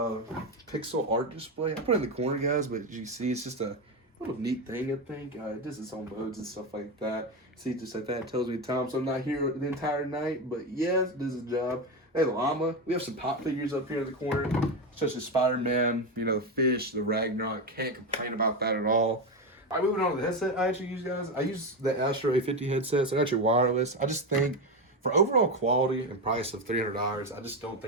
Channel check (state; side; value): normal; both; correlation 0.15